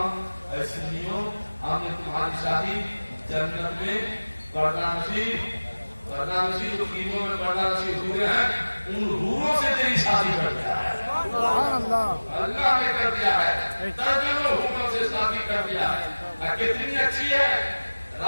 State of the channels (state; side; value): inverted; both; correlation -1.00